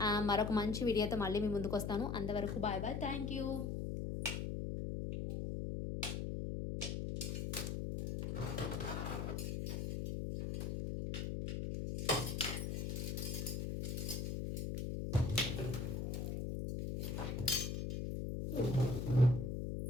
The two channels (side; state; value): left; noise; hum, 2 dB below the sound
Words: మరొక మంచి వీడియోతో మళ్ళీ మీ ముందుకు వస్తాను. అంతవరకు బాయ్ బాయ్, థ్యాంక్ యూ.